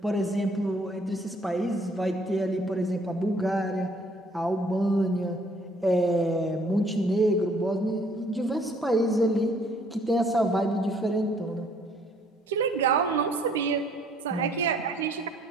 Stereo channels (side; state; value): both; normal; correlation 0.61